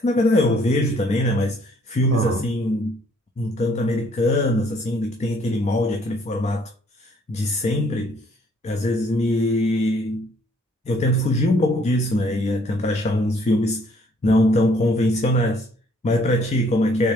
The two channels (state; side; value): normal; both; correlation 0.63